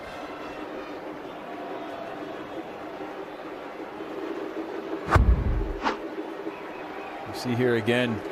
You see here again,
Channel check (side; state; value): both; identical; correlation 1.00